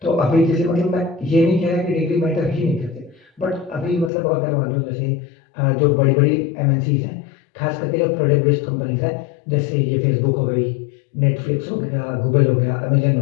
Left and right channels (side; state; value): right; drops out; at 4.1 s